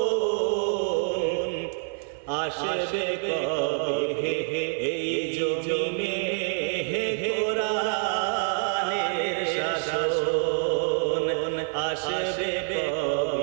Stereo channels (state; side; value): silent; left; 57 dB below the other